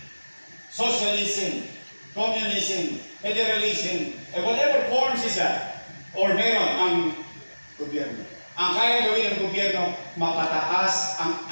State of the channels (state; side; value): inverted; both; correlation -1.00